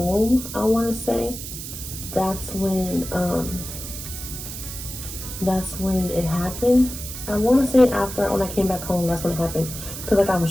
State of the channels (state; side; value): noise; right; hiss, 9 dB below the sound